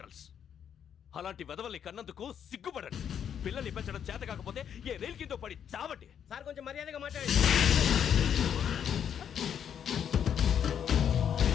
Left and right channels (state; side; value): quieter; right; 8.6 dB